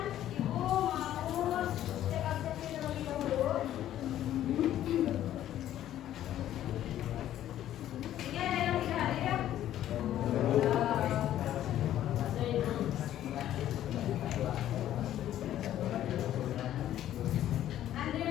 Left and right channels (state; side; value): quieter; right; 12.2 dB